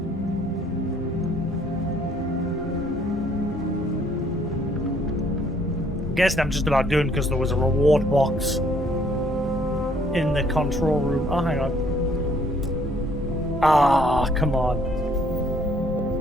Guessing I'm just about done because there was a reward box in the control room. Oh, hang on. Ah, come on.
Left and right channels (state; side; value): normal; both; correlation 0.63